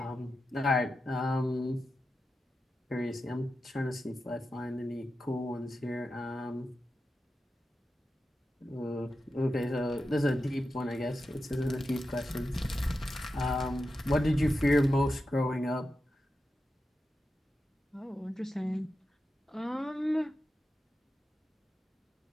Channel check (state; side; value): normal; both; correlation 0.90